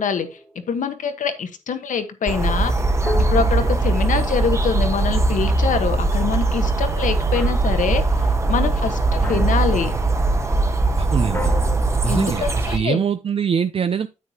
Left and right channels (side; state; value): both; normal; correlation 0.68